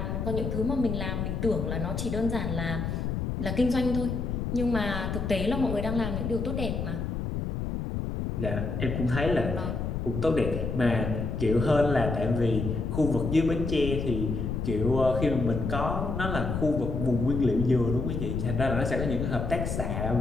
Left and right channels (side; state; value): left; noise; rumble, 2 dB below the sound